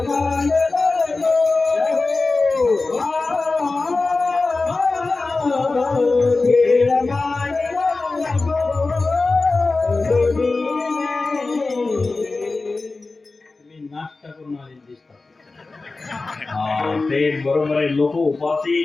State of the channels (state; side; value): quieter; right; 3.6 dB